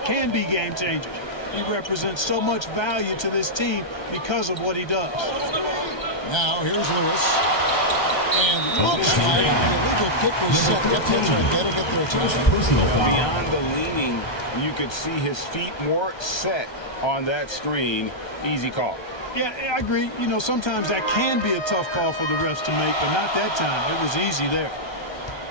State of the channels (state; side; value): late; right; 1.3 ms